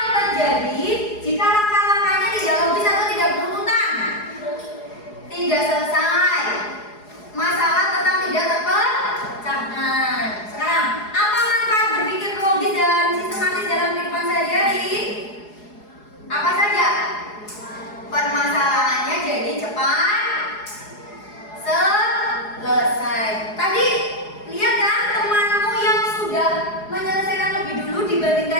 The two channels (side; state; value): right; late; 4.8 ms